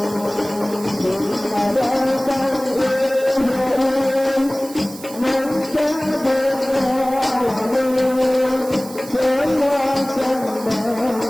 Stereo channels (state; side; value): noise; right; hiss, 16 dB below the sound